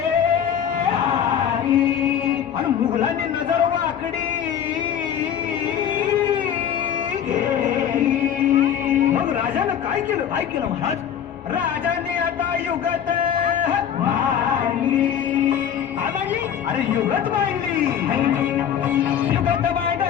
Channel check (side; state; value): right; quieter; 9.0 dB